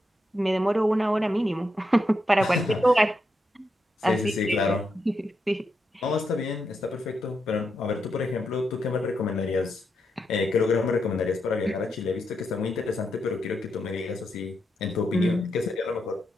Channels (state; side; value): normal; both; correlation 0.83